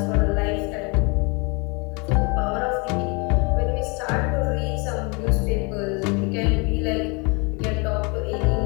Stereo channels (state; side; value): quieter; right; 30.2 dB